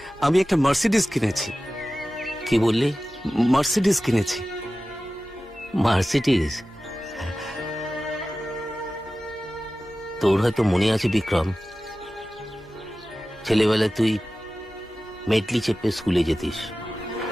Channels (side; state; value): both; normal; correlation 0.95